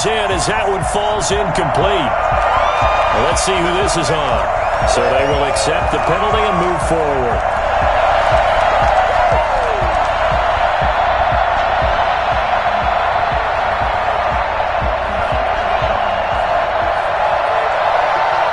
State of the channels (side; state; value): both; identical; correlation 1.00